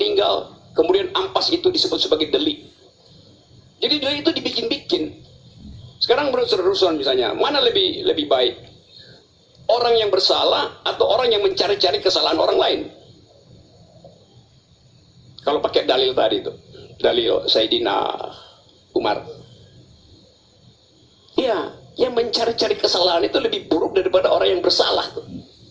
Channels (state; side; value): identical; both; correlation 1.00